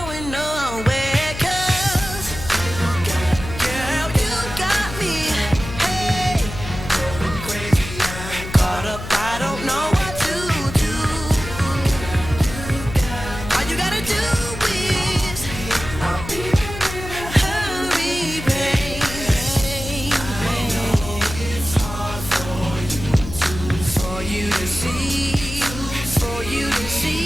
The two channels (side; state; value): left; noise; hum, 10 dB below the sound